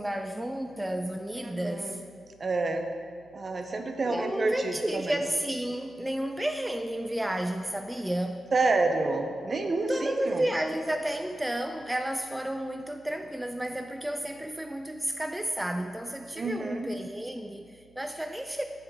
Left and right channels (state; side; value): noise; right; hum, 29 dB below the sound